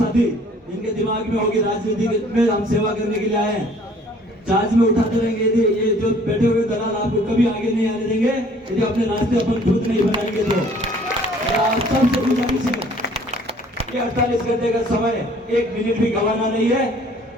जिनके दिमाग में होगी राजनीति में हम सेवा करने के लिए आए हैं, चार्ज में उठाते रहेंगे। ये जो बैठे हुए दलाल आपको कभी आगे नहीं आने देंगे यदि अपने रास्ते अपन खुद नहीं बनाएंगे। तो आप सबसे गुजारिश है कि 48 घंटे का समय, एक मिनट भी गंवाना नहीं है।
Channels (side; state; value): both; normal; correlation 0.56